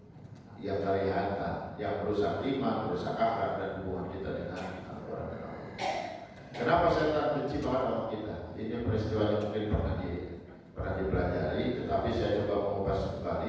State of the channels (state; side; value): identical; both; correlation 1.00